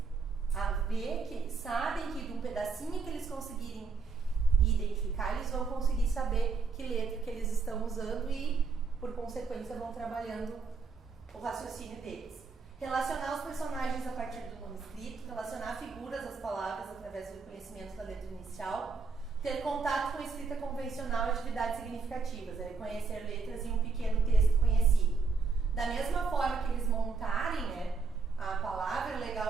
a ver que eles sabem que de um pedacinho que eles conseguirem identificar, eles vão conseguir saber que letra que eles estão usando e por consequência vão trabalhando o raciocínio deles. Relacionar os personagens a partir do nome escrito, relacionar figuras às palavras através do conhecimento da letra inicial, ter contato com a escrita convencional e atividades significativas, reconhecer letras em um pequeno texto conhecido. Da mesma forma que eles montarem, né, a palavra, o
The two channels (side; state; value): left; quieter; 4.6 dB